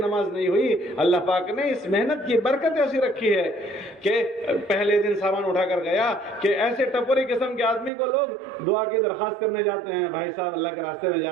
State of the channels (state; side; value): drops out; left; at 7.9 s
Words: نہیں ہوئی۔ اللہ پاک نے اس محنت کی برکت ایسی رکھی ہے کہ پہلے دن سامان اٹھا کر گیا کہ ایسے ٹپوری قسم کے آدمی کو لوگ دعا کی درخواست کرنے جاتے ہیں، بھائی صاحب اللہ کے راستے میں